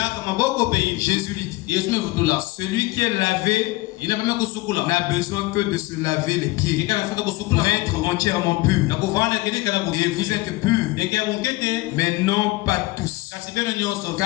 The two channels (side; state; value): right; quieter; 20.7 dB